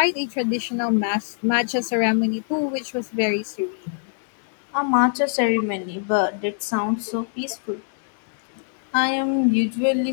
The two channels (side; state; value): right; silent; 62 dB below the other